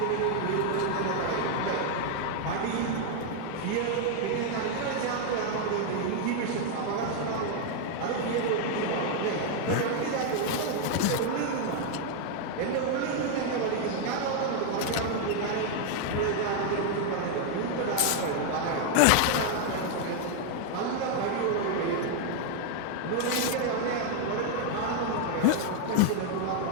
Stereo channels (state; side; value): different; both; correlation 0.00